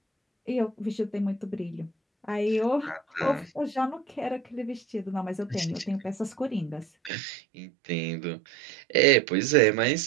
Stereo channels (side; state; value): left; drops out; at 7.1 s